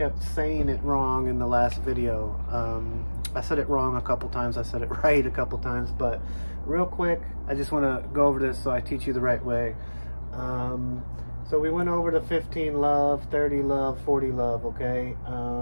saying it wrong in the last video. I said it wrong a couple times, I said it right a couple times, but real quick, I just want to go over this so I teach you the right way. So we went over the 15 love, 30 love, 40 love, okay?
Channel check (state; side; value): inverted; both; correlation -1.00